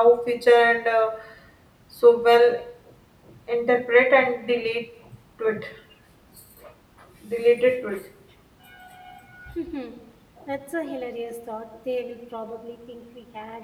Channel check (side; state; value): both; identical; correlation 1.00